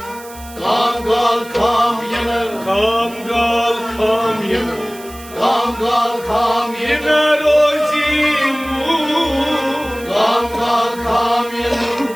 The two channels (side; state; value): right; noise; hiss, 19 dB below the sound